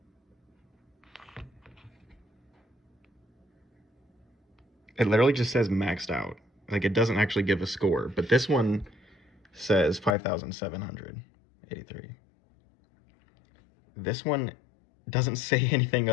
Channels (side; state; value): right; drops out; at 10.2 s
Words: It literally just says maxed out. Like, it doesn't actually give a score, but this one says 5,783. This one doesn't say anything